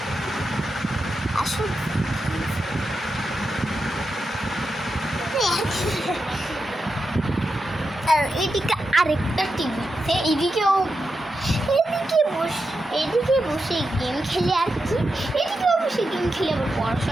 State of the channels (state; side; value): normal; both; correlation 0.88